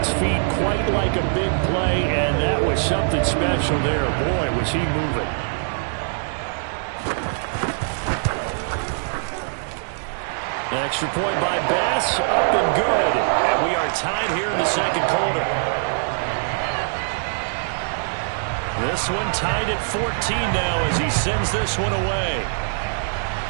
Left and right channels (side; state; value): left; silent; digital silence